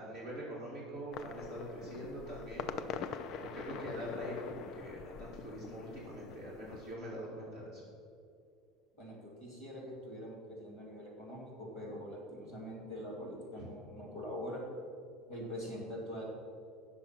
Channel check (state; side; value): normal; both; correlation 0.34